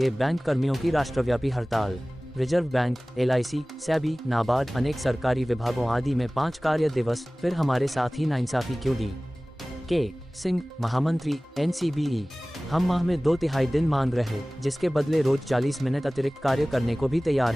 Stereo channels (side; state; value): both; normal; correlation 0.98